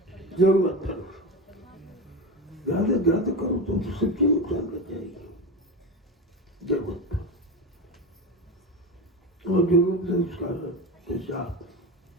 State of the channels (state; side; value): normal; both; correlation 0.21